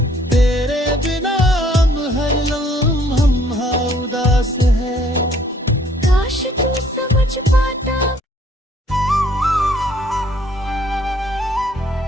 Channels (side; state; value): both; normal; correlation 0.61